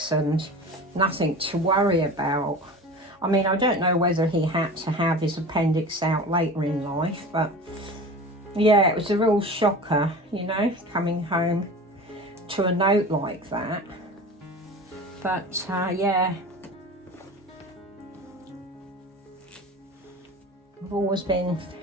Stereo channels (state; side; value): normal; both; correlation 0.35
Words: and nothing to worry about. I mean, I don't know whether he had to have his appendix out later in life, but yeah, it was a real shocker, you know, coming home to a note like that. But yeah, I've always been